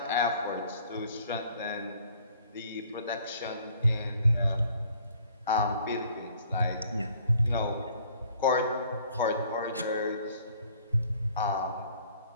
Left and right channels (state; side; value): inverted; both; correlation -0.58